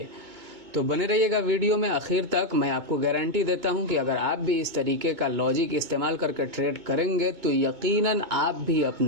तो बने रहिएगा वीडियो में आखिर तक। मैं आपको गारंटी देता हूं कि अगर आप भी इस तरीके का लॉजिक इस्तेमाल करके ट्रेड करेंगे तो यकीनन आप भी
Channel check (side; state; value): left; late; 2.2 ms